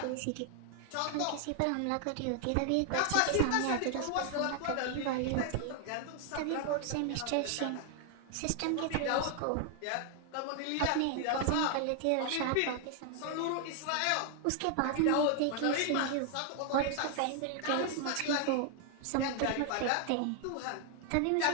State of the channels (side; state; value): both; different; correlation 0.00